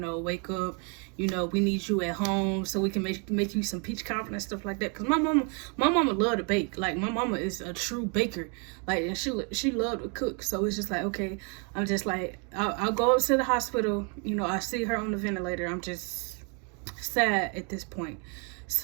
wake up. We need you at home so we can make you some peach cobbler and stuff like that. Because my mama loved to bake. Like, my mama is a true baker. Like, and she loved to cook. So it's just like, okay, I'm just like, I'll go up to the hospital. I see her on the ventilator. I'm just sad at this point.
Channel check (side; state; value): left; quieter; 36.9 dB